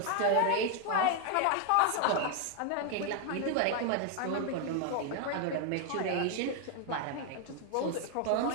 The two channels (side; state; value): both; different; correlation 0.00